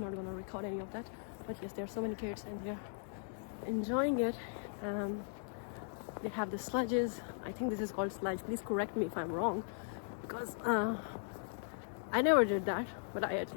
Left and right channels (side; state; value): right; silent; digital silence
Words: record any of that, but yes, there are so many kids and they're enjoying it. They have the sledges. I think this is called sledge. Please correct me if I'm wrong, because I never did that, but I at